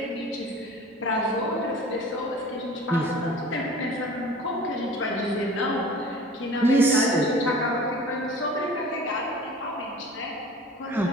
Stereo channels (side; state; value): both; normal; correlation 0.42